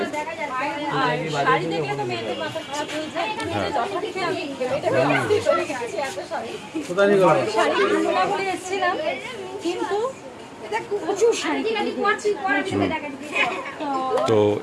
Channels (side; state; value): both; identical; correlation 1.00